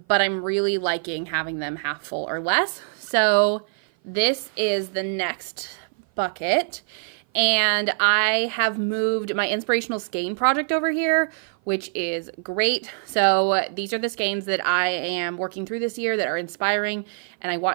I'm really liking having them half full or less. So this is the next bucket. And I have moved my inspirational skein project over here, which is great. So these are the skeins that I am working through this year that are inspiring and I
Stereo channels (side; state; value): left; silent; 56 dB below the other